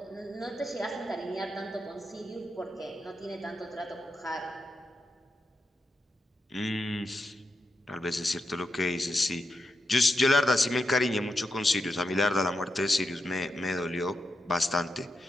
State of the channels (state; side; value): normal; both; correlation 0.87